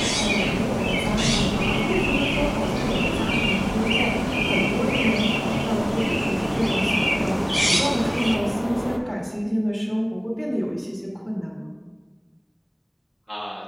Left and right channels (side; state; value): both; identical; correlation 1.00